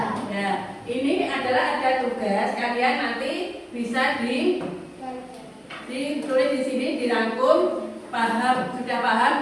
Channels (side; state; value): both; identical; correlation 1.00